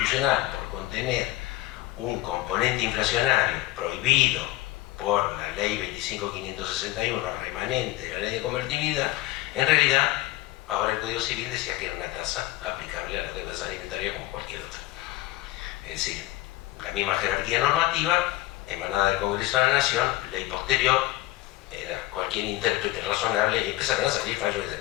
por contener un componente inflacionario prohibido por la ley 25.561 remanente de la ley de convertibilidad, en realidad ahora el Código Civil decía que era una tasa aplicable a las deudas alimentarias como cualquier otra. Es decir, la misma jerarquía normativa emanada del Congreso de la Nación, ley posterior, era cualquier intérprete razonable y empezaron a salir fallos en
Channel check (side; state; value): right; quieter; 17.4 dB